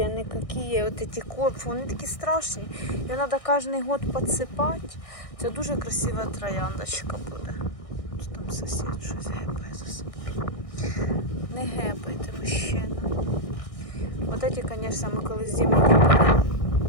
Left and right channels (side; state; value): right; late; 1.6 ms